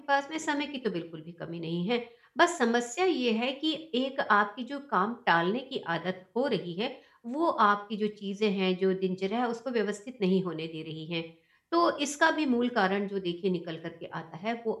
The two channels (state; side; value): identical; both; correlation 1.00